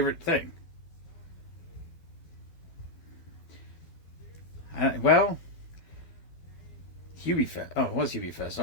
thing. Hubie Fest. Oh, it was Hubie Fest.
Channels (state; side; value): late; right; 12 ms